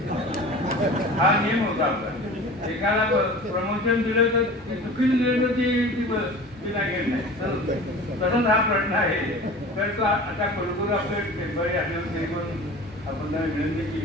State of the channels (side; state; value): both; normal; correlation 0.38